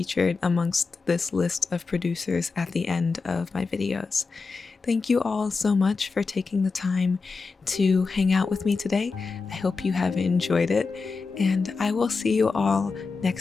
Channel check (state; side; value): quieter; right; 4.4 dB